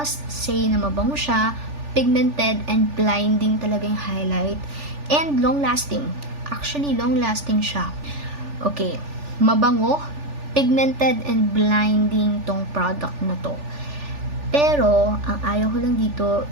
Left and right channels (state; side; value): late; left; 3.4 ms